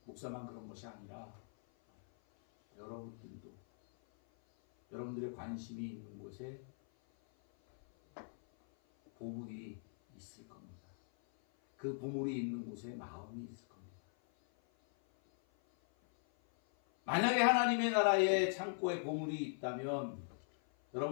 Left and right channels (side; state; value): right; silent; 51 dB below the other